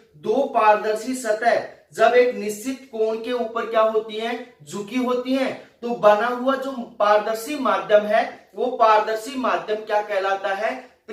दो पारदर्शी सतह जब एक निश्चित कोण के ऊपर क्या होती हैं, झुकी होती हैं, तो बना हुआ जो पारदर्शी माध्यम है वो पारदर्शी माध्यम क्या कहलाता है,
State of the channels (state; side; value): identical; both; correlation 1.00